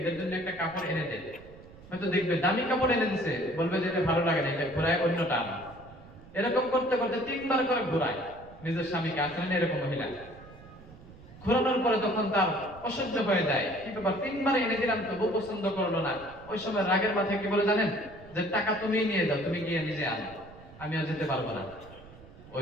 জন্য একটা কাপড় এনে দেয়, হয়তো দেখবে দামি কাপড় এনে দিছে, বলবে যে এটা ভালো লাগে না, এটা ঘোরায় অন্যটা আনা। এরকম করতে করতে 3 বার করে ঘোরায় নিজের স্বামীকে। আসলে এরকম মহিলা ঘোরানোর পরে তখন তার অসহ্য হয়ে যায়, কি ব্যাপার 3 বার এনে দিলাম তবু পছন্দ করলো না। ওই সময় রাগের মাথায় কি বলে জানেন? যে টাকা তুমি নিয়ে যাও, তুমি গিয়ে নিজে আনো, আমি আর যেতে পারবো না।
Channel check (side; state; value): right; noise; rumble, 20 dB below the sound